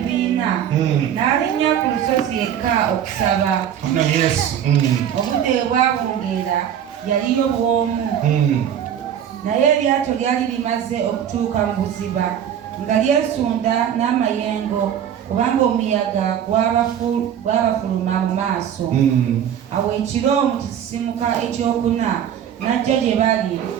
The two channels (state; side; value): quieter; left; 9.5 dB